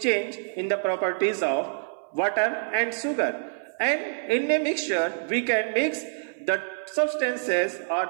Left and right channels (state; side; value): silent; left; 61 dB below the other